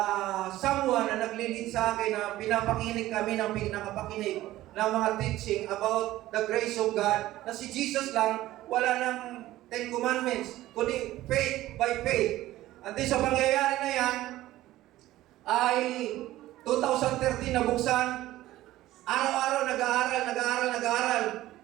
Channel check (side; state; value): left; quieter; 15.6 dB